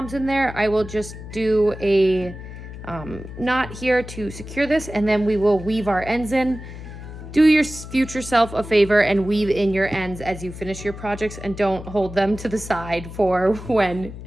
in there, I will just do a knot here to secure this, and then we will weave our ends in. Do your future self a favor and weave in your ends as you finish your projects, and don't hold them to the side for when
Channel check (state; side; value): noise; left; hum, 12 dB below the sound